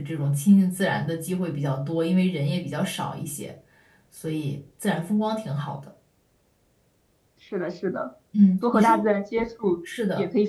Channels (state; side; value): identical; both; correlation 1.00